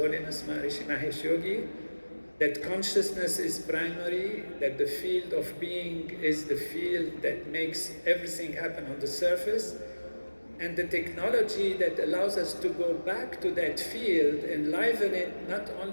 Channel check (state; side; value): inverted; both; correlation -1.00